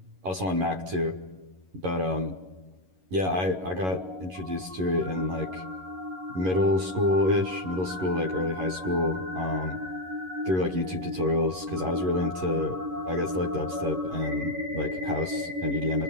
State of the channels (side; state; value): left; late; 11 ms